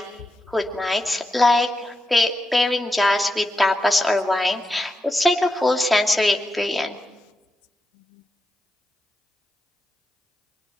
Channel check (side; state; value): both; normal; correlation 0.87